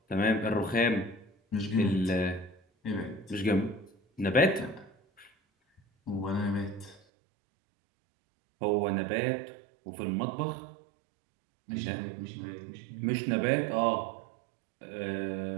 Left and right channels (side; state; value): left; drops out; at 7.0 s